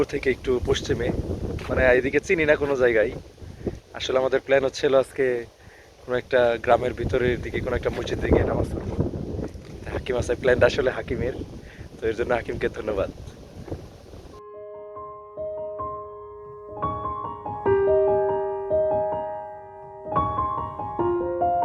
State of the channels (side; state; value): both; identical; correlation 1.00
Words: থেকে একটু পশ্চিমে, মানে এদিকে চিনি না কোনো জায়গায়। আসলে আমাদের প্ল্যান হচ্ছিল আজকে কোনো একটা গ্রামের ভিতরের দিকে কোনো একটা মসজিদে গিয়ে নামাজ পড়বো। হাকিম আছে, প্ল্যানটা আসলে হাকিমের, তো এর জন্য হাকিমকে ধন্যবাদ।